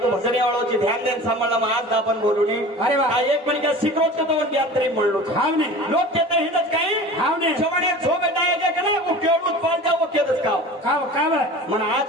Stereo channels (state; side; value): normal; both; correlation 0.38